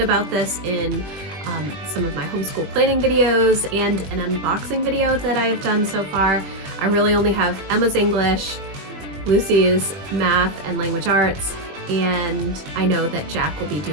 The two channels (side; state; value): left; late; 20 ms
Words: about this in some of my homeschool planning videos and an unboxing video that I have done so far. I really only have Emma's English, Lucy's math and language arts, and I know that Jack will be